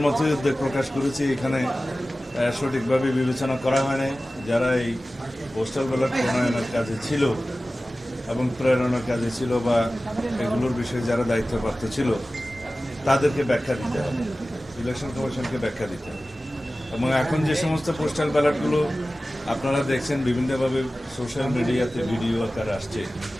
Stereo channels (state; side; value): normal; both; correlation 0.96